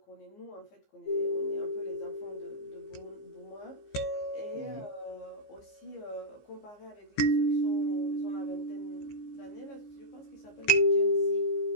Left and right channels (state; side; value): late; right; 15 ms